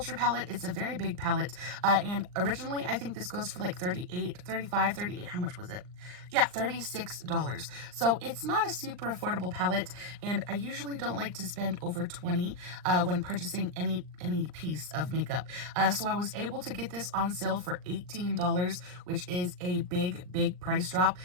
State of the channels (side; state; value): left; late; 39 ms